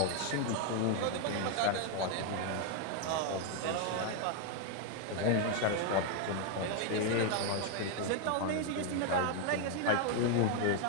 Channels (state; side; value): different; both; correlation 0.01